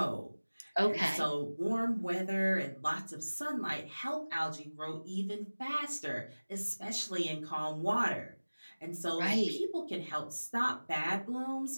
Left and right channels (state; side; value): inverted; both; correlation -1.00